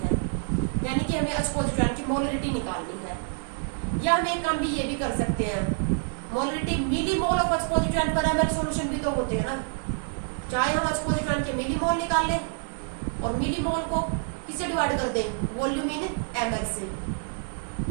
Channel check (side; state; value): left; silent; 60 dB below the other